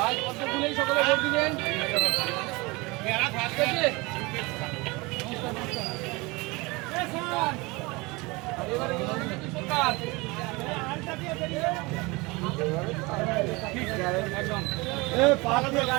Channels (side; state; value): left; quieter; 24.6 dB